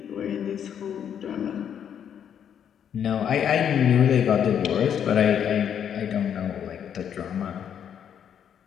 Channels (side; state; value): right; quieter; 8.7 dB